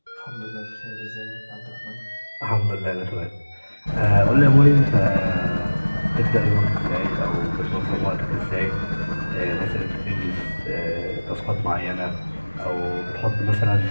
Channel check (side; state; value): both; inverted; correlation -1.00